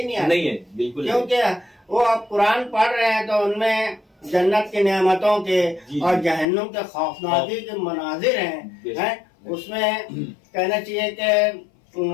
नहीं आता। नहीं है बिल्कुल, क्योंकि वो आप कुरान पढ़ रहे हैं तो उनमें जन्नत की नेमतों के और जहन्नुम के खौफनाकी के मनाजिर हैं, उसमें कहना चाहिए कि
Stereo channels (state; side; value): drops out; right; at 6.5 s